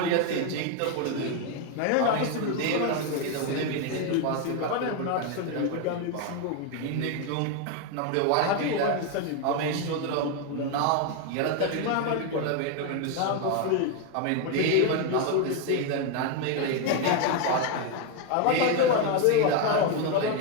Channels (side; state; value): both; different; correlation 0.01